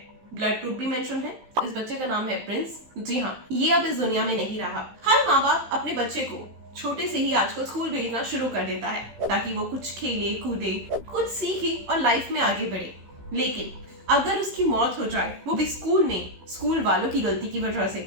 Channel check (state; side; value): late; left; 15 ms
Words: ब्लड ग्रुप भी मेंशन है। इस बच्चे का नाम है प्रिंस। जी हाँ, ये अब इस दुनिया में नहीं रहा। हर माँ बाप अपने बच्चे को छोटे से ही आजकल स्कूल भेजना शुरू कर देता है ताकि वो कुछ खेले कूदे, कुछ सीखे और लाइफ में आगे बढ़े। लेकिन अगर उसकी मौत हो जाए, वो भी स्कूल में, स्कूल वालों की गलती की वजह से,